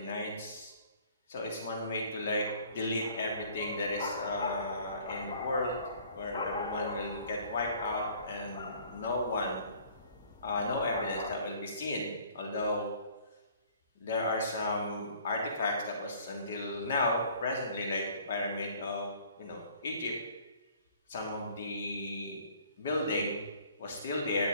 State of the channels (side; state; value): both; inverted; correlation -0.55